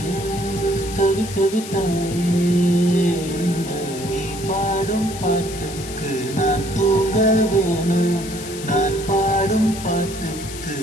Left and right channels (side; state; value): left; noise; hiss, 12 dB below the sound